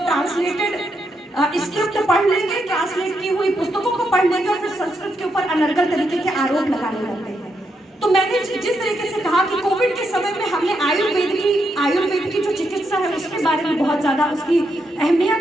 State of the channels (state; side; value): normal; both; correlation 0.81